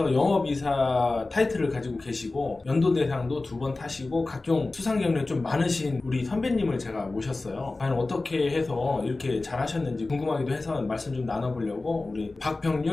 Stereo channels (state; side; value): quieter; right; 3.3 dB